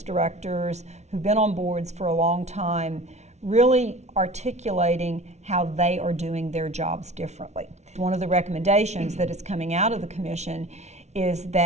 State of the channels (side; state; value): left; late; 0.32 ms